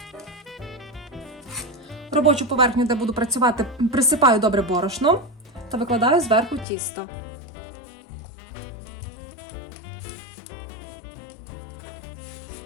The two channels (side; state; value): right; drops out; at 6.7 s